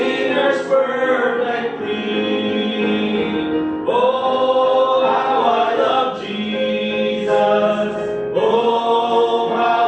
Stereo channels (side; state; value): both; identical; correlation 1.00